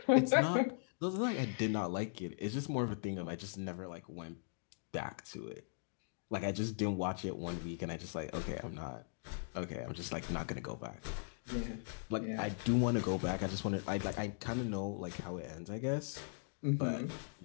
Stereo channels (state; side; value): silent; right; digital silence